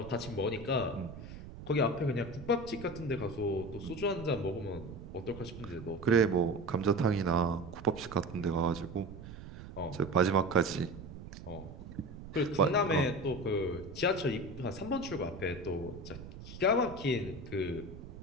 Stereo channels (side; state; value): right; noise; rumble, 13 dB below the sound